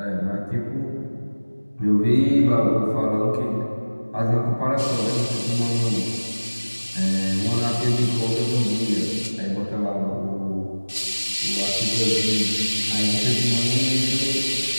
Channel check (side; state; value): both; inverted; correlation -1.00